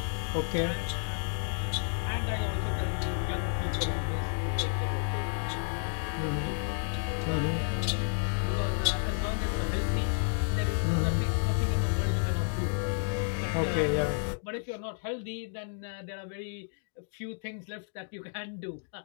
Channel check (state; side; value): silent; right; digital silence